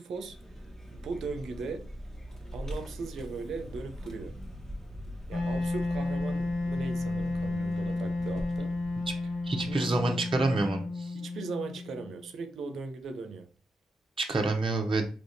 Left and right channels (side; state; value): both; normal; correlation 0.86